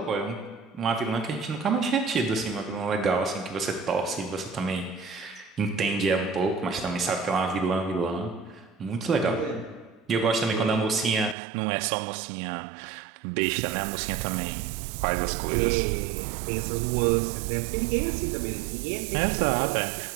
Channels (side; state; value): left; drops out; at 11.4 s